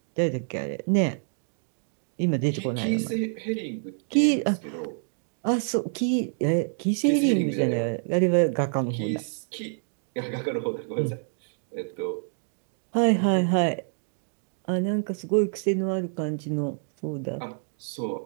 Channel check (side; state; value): left; silent; 59 dB below the other